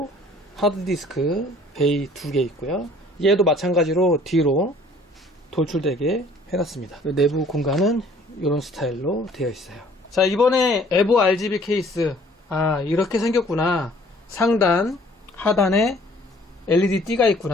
하드디스크 베이 2개 있고요. 얘도 마찬가지로 뒤로 돌출되게 해놨습니다. 내부 공간은 이런 스타일로 되어 있어요. 자, 이번에 에보 RGB 케이스, 이렇게 생겼구나, 상단 하단에 LED 띠가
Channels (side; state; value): both; normal; correlation 0.56